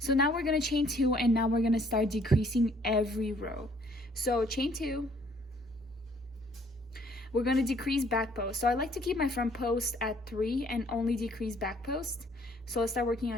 now we're gonna chain 2, and now we're gonna start decreasing every row. So chain 2, we're going to decrease back post. So I like to keep my front post at 3 and only decrease back post. So let's start working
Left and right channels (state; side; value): normal; both; correlation 0.62